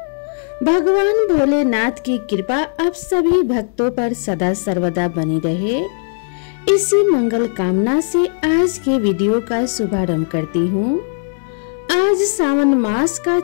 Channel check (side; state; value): right; silent; digital silence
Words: भगवान भोलेनाथ की कृपा आप सभी भक्तों पर सदा सर्वदा बनी रहे, इसी मंगल कामना से आज के वीडियो का शुभारंभ करती हूँ। आज सावन मास का